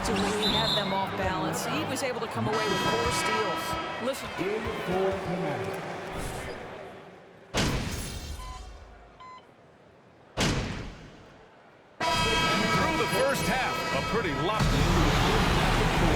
he had them off balance. He was able to come away with 4 steals. Listen. Through the first half, a pretty lot.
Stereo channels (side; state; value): both; identical; correlation 1.00